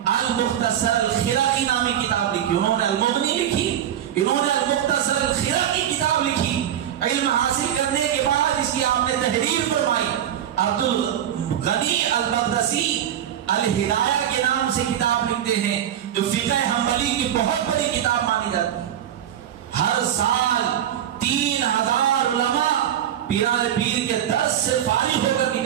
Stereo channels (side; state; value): left; quieter; 10.4 dB